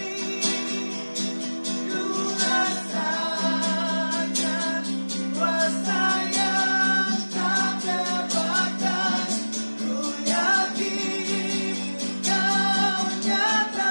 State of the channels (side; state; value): both; inverted; correlation -1.00